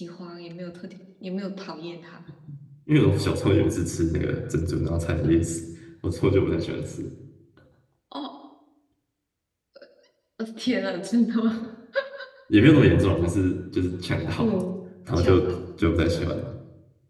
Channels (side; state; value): both; identical; correlation 1.00